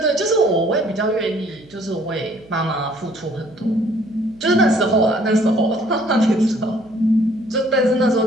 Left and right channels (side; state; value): right; noise; hum, 25 dB below the sound